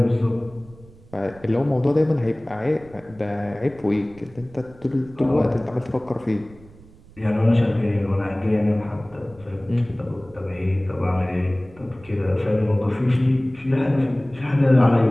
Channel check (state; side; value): noise; right; rumble, 23 dB below the sound